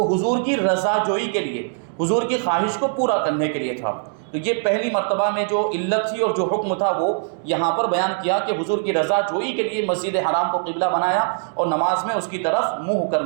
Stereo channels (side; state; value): left; silent; digital silence